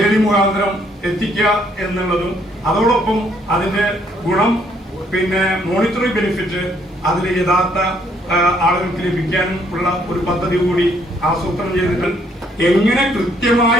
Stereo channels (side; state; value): both; normal; correlation 0.68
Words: മുഖാന്തരം എത്തിക്കുക എന്നുള്ളതും, അതോടൊപ്പം അതിന്റെ ഗുണം പിന്നെ മോണിറ്ററി ബെനിഫിറ്റ് അതിൽ യഥാർത്ഥ ആളുകൾക്ക് ലഭിക്കാനും ഉള്ള ഒരു പദ്ധതി കൂടി ആസൂത്രണം ചെയ്തിട്ട് എങ്ങനെ